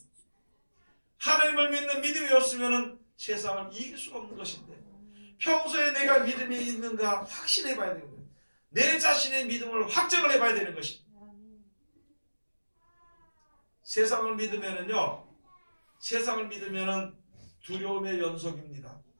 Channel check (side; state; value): both; inverted; correlation -1.00